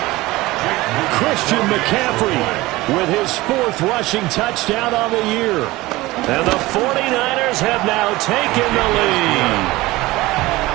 Christian McCaffrey with his 4th rushing touchdown on the year. And the 49ers have now taken the lead.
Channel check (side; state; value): left; quieter; 19.4 dB